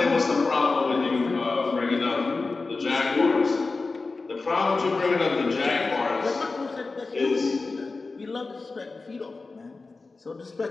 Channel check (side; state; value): right; quieter; 3.8 dB